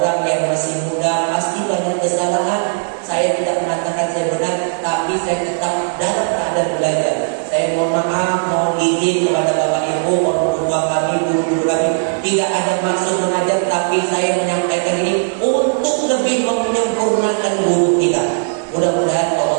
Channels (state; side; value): silent; left; digital silence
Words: yang masih muda pasti banyak kesalahan. Saya tidak mengatakan saya benar, tapi saya tetap dalam keadaan belajar. Saya mohon maaf, mohon izin kepada Bapak Ibu, orang tua kami, guru-guru kami. Tidak ada maksud mengajar, tapi saya menyampaikan ini untuk lebih menyempurnakan guru kita. Mudah-mudahan Allah